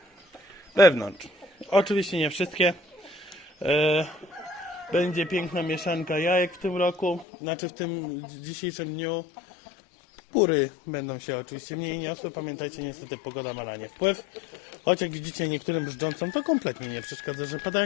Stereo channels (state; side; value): drops out; right; at 7.2 s